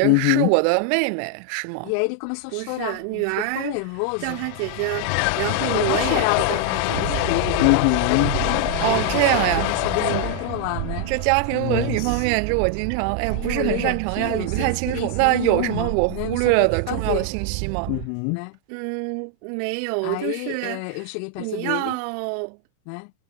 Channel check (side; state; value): both; different; correlation 0.00